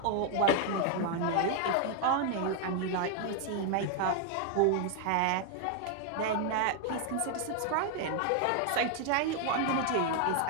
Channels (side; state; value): both; different; correlation 0.00